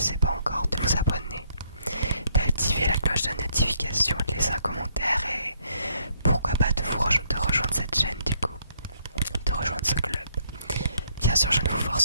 pas encore, de vous abonner, d'activer la cloche de notification, de laisser un commentaire et pourquoi pas de rejoindre cette chaîne du coup, de rejoindre ce club. Bien sûr, je ne vous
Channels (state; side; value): inverted; both; correlation -0.69